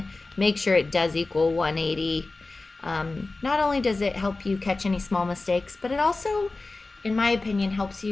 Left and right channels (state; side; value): quieter; right; 3.4 dB